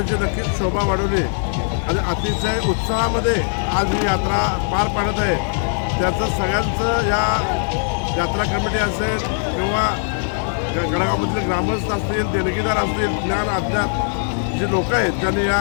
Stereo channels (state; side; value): silent; right; 64 dB below the other